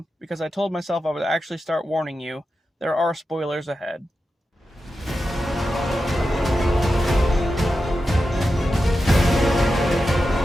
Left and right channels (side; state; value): both; normal; correlation 0.91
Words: because I told myself I would actually start warning you, there are spoilers ahead.